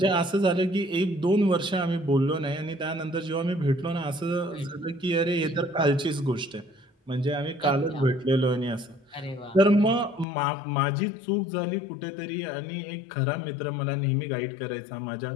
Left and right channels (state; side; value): drops out; right; at 10.2 s